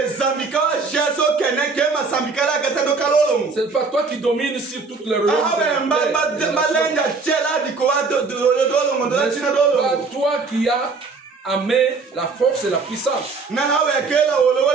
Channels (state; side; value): quieter; left; 4.3 dB